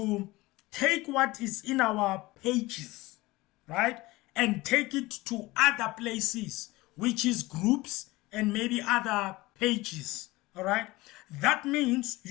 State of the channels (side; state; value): right; quieter; 20.4 dB